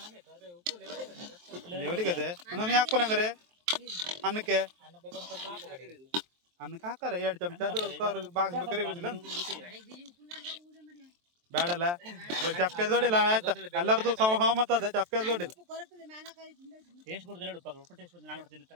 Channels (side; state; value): left; late; 23 ms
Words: ಲೆವೆಲಿಗೆ ಅದೇ ನಾನು ಹಾಕ್ಬೋನಂಗಾರೆ ಅನ್ನಕ್ಕೆ ಹಾಕಾರ 2 ಚಮಚ ಅದು ಬಾಗ್ಬೇಕಾರೆ ಇರುದಿಲ್ಲ ಬೇಡಲ್ಲ. ಚಪ್ಪೆ ದೊಡ್ಡಿಲ್ಲ ಆಯ್ತಾ ಎಲ್ಲರದು ಸಹಮತ ಅದ. ಚಪ್ಪೆ ದೊಡ್ಡಿಲ್ಲ